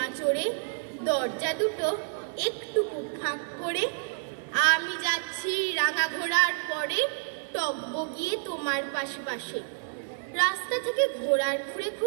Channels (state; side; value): silent; left; digital silence